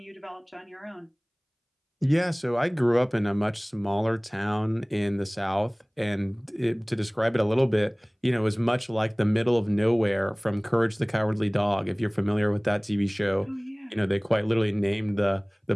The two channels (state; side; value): identical; both; correlation 1.00